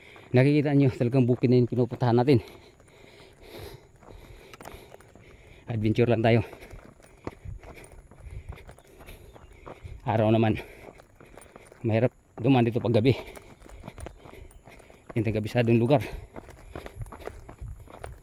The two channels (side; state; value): both; identical; correlation 1.00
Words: nakikita nyo talagang bukid na yung pinupuntahan natin. Adventure lang tayo. Araw naman mahirap dumaan dito pag gabi. Yung tagabisadong lugar.